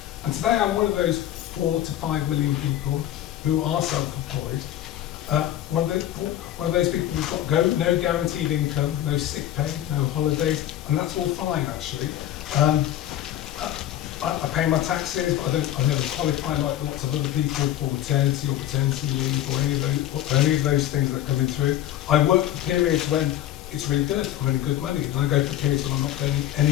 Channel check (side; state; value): right; quieter; 12.3 dB